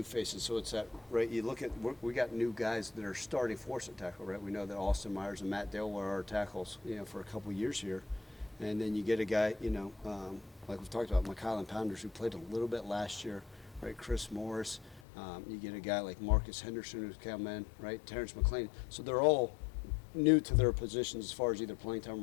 faces, so it's that, right, you look at, we got new guys that are starting for us at tackle, right? We know that Austin Myers and Matt Dale were our tackles, for a couple years here. And then you get a guy, like we've talked about, McKylan Pounders, who played a little bit last year, right? Chris Morris. You get a guy like Marcus Henderson who's come in, right? Terrence McLean. So they're all new to their positions as far as either playing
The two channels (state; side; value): drops out; right; at 15.1 s